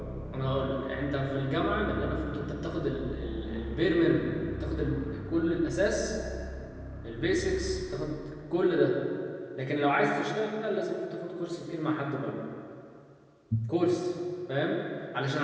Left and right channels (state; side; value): identical; both; correlation 1.00